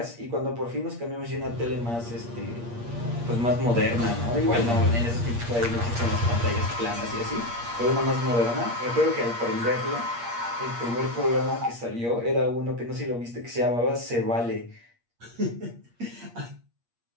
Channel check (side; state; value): left; late; 8.5 ms